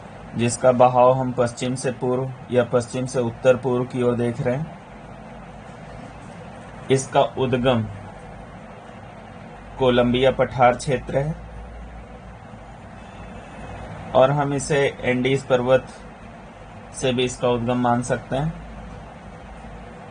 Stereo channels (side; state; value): both; identical; correlation 1.00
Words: जिसका बहाव हम पश्चिम से पूर्व या पश्चिम से उत्तर पूर्व की ओर देख रहे हैं। इसका उद्गम कोलंबिया पठार क्षेत्र है और हम इसे एंडीज पर्वत से भी इसका उद्गम मान सकते हैं।